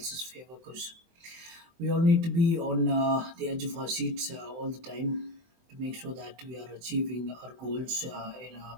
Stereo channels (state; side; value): late; left; 24 ms